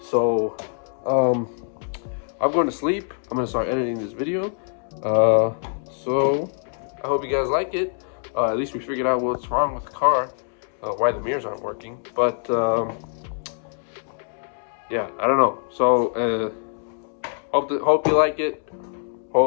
I'm going to sleep. I'm gonna start editing this video. So I hope you guys like it. At least we figured out what's wrong with the car, why the mirrors aren't working. But yeah, I don't know. So hope you like it.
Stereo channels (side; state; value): right; silent; 63 dB below the other